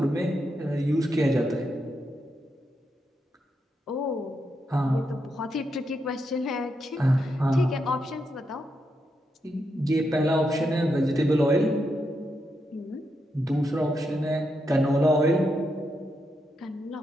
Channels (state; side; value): normal; both; correlation 0.83